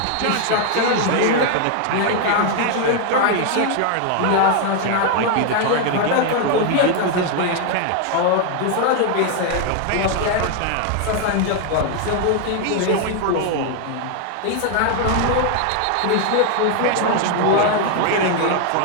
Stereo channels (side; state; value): both; different; correlation 0.00